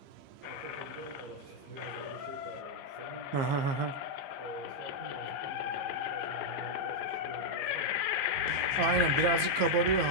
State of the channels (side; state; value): left; late; 15 ms